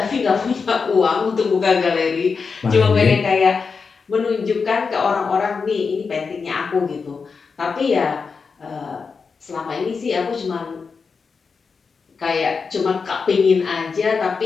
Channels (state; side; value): quieter; right; 5.2 dB